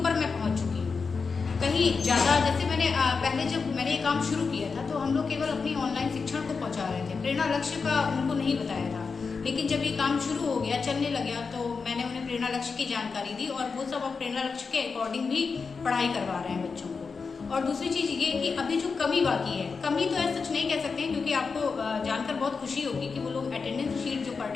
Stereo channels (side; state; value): right; quieter; 4.9 dB